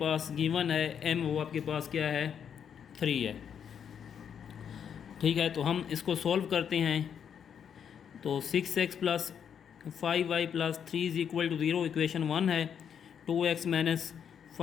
गिवन है m, वो आपके पास क्या है 3 है, ठीक है। तो हम इसको सॉल्व करते हैं। तो 6x plus 5y plus 3 is equal to 0 equation 1 है। 2x minus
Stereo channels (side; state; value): right; quieter; 8.0 dB